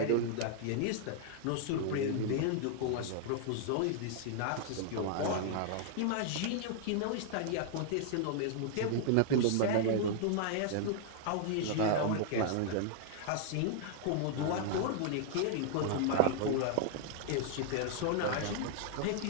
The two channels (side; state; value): both; different; correlation -0.01